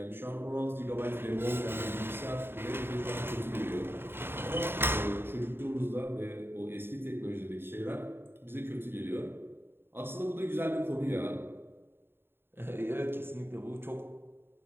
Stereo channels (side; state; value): left; late; 0.11 ms